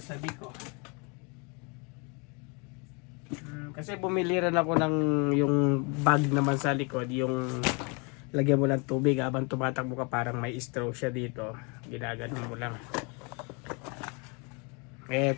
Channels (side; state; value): right; quieter; 32.5 dB